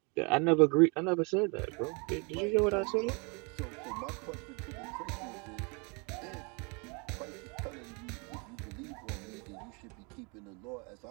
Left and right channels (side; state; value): left; quieter; 31.9 dB